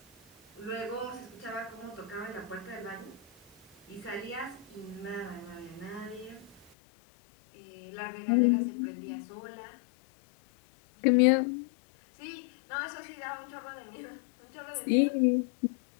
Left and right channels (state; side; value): drops out; right; at 6.7 s